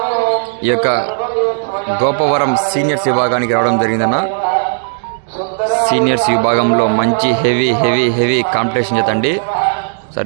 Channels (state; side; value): silent; left; digital silence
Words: ఈ యొక్క గోపవరం సీనియర్స్ విభాగానికి రావడం జరిగిందన్న. సీనియర్స్ విభాగంలో మంచి హెవీ హెవీ హెవీ కాంపిటీషన్ జత అండి.